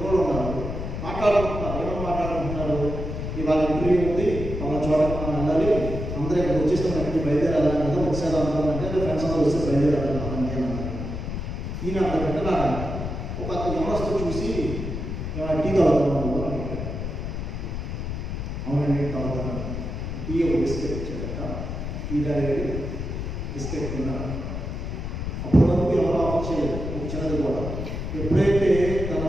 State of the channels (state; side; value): noise; left; rumble, 5 dB below the sound